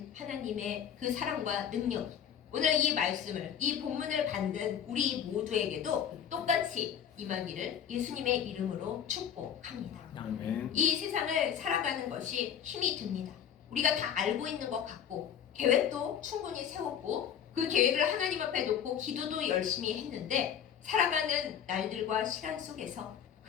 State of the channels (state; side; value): quieter; right; 8.7 dB